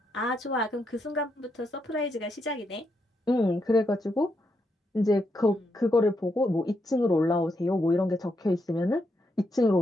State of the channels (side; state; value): both; normal; correlation 0.81